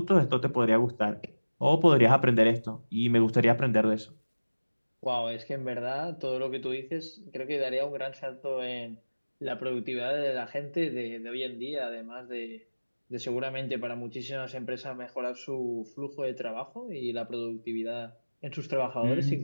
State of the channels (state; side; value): inverted; both; correlation -1.00